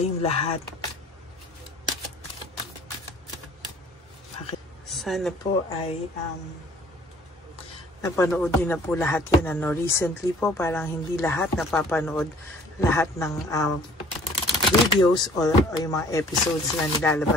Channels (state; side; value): normal; both; correlation 0.53